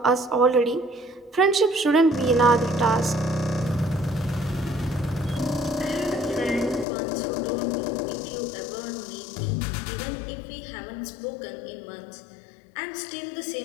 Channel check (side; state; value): right; drops out; at 6.9 s